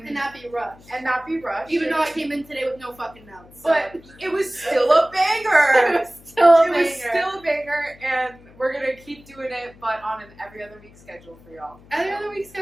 not be rushed. not be rushed. Even though I came in today with no fucking notes. So. But it was still a banger. it was still a It was banger. still a banger, and we're gonna keep doing it, but on an every other week schedule for y'all. Every other week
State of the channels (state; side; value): noise; left; hum, 24 dB below the sound